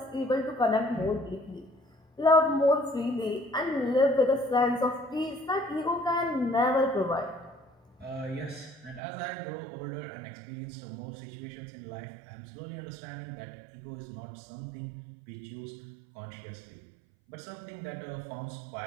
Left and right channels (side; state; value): left; drops out; at 9.0 s